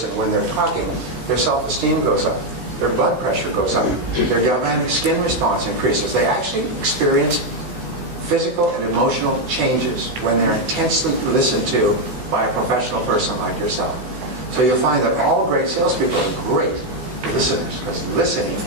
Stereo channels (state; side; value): late; left; 16 ms